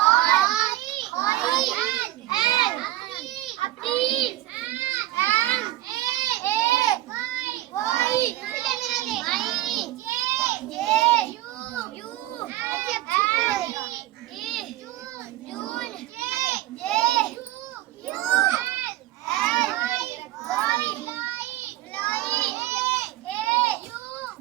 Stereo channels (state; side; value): quieter; left; 15.7 dB